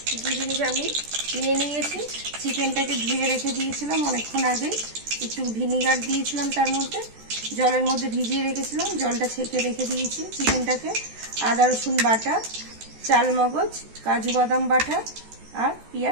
কী কী জিনিস আমি নিয়ে নিয়েছি। চিকেনটাকে ধুয়ে রেখে দিয়েছিলাম অনেকক্ষণ আগে, একটু ভিনিগার দিয়েছিলাম, তার মধ্যে জলের মধ্যে ভিজিয়ে রেখেছিলাম, জলটা ছেঁকে রেখে দিয়েছি চিকেনটাকে। আদা রসুন বাটা, চাল মগজ, কাজু বাদাম বাটা আর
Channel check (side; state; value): left; late; 14 ms